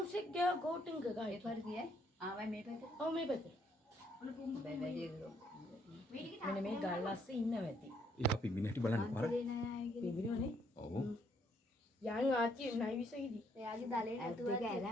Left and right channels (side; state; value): both; normal; correlation 0.70